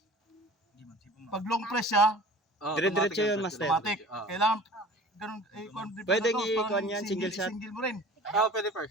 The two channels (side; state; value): both; normal; correlation 0.43